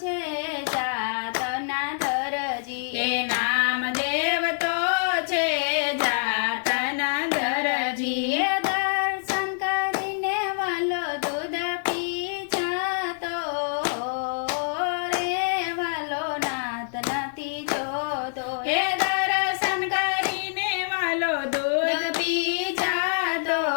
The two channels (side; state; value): right; silent; digital silence